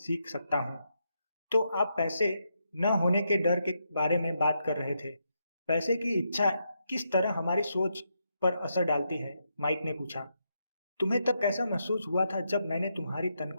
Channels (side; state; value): both; inverted; correlation -0.81